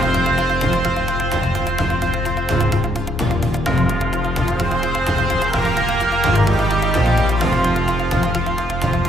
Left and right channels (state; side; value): normal; both; correlation 0.72